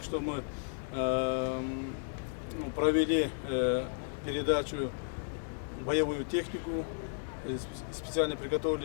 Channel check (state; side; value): silent; right; digital silence